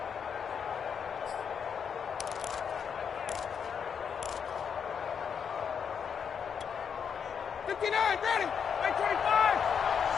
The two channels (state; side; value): quieter; right; 7.1 dB